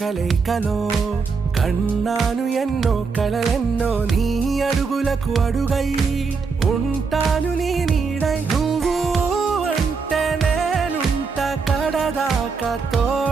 కలయికలో కన్నాను ఎన్నో కలలెన్నో నీ అడుగులకు అడుగై ఉంటాను నీ నీడై నువ్వు అంటే నేనుంట కడదాకా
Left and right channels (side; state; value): left; quieter; 5.0 dB